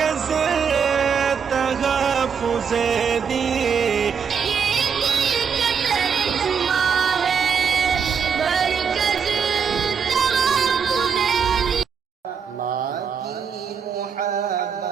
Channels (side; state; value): left; quieter; 6.7 dB